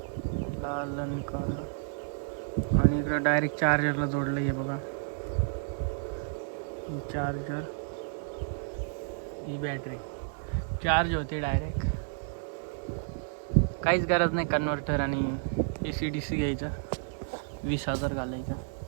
लाल आणि काळं. आणि इकडं डायरेक्ट चार्जरला जोडलं. हे बघा ही चार्जर, ही बॅटरी चार्ज होते डायरेक्ट. काहीच गरज नाही कन्व्हर्टर आणि AC/DC घ्यायचा, 20,000 घालायचा.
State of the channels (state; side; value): silent; left; digital silence